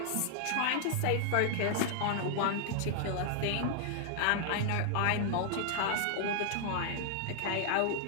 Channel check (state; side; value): different; both; correlation -0.01